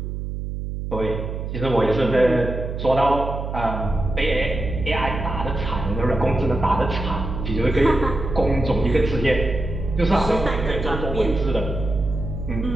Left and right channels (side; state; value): right; noise; hum, 5 dB below the sound